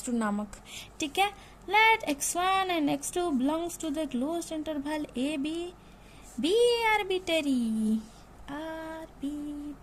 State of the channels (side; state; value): both; identical; correlation 1.00